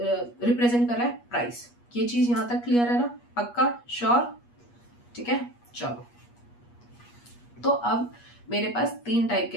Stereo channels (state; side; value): late; right; 8.4 ms